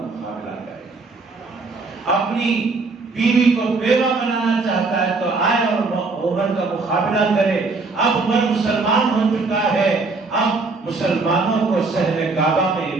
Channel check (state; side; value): quieter; left; 3.8 dB